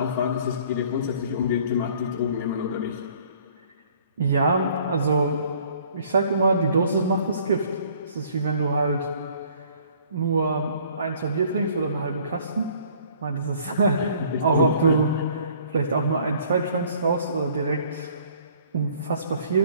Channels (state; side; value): inverted; both; correlation -0.56